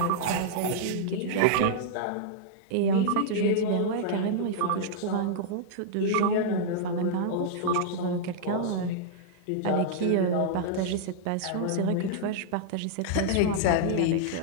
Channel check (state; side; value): different; both; correlation -0.01